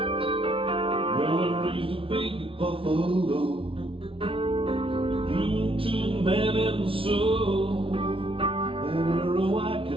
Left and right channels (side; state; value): left; late; 0.26 ms